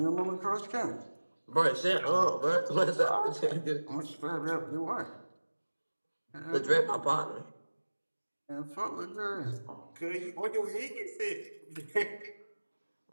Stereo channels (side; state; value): both; inverted; correlation -1.00